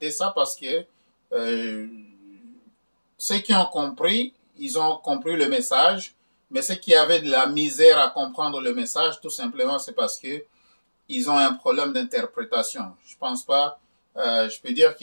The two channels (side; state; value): both; inverted; correlation -1.00